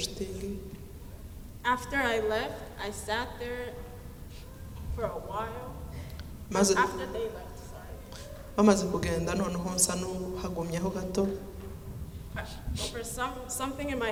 After I left, I sat there for a while. After they left, sorry. Bamaze kugenda noneho nsa n'uhagumyeho gato. For something in my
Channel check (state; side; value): identical; both; correlation 1.00